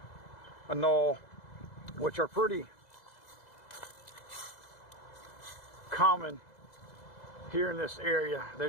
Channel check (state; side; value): late; right; 2.0 ms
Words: anole, which are pretty common here in this area. They're